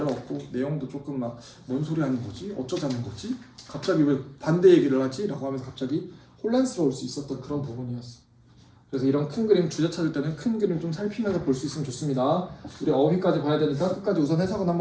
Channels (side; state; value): both; identical; correlation 1.00